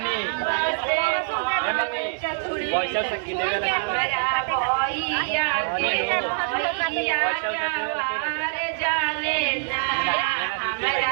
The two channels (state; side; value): silent; left; digital silence